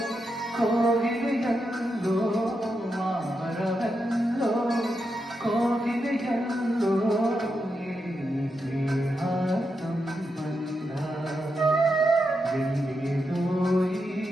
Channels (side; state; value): both; normal; correlation 0.85